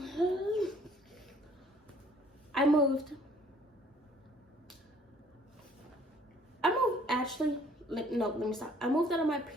I moved actually. No, let me stop. I moved out of my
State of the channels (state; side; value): normal; both; correlation 0.57